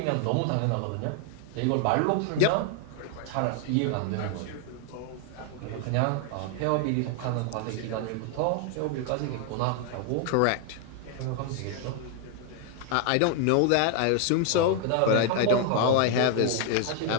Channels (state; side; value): different; both; correlation 0.00